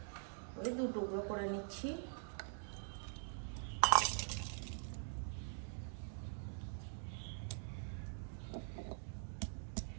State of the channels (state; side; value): silent; left; digital silence